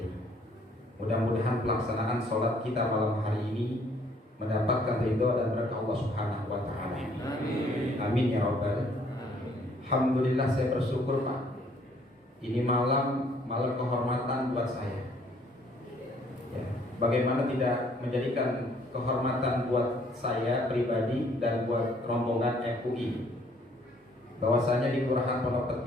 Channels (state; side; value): normal; both; correlation 0.62